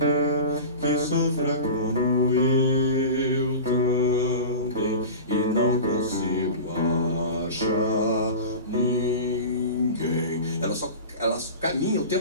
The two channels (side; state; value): both; inverted; correlation -0.32